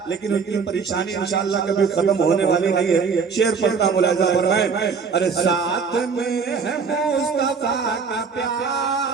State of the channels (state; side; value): quieter; left; 5.5 dB